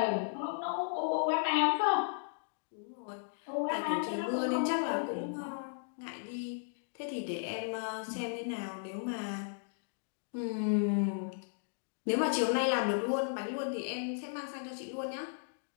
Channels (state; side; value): silent; right; digital silence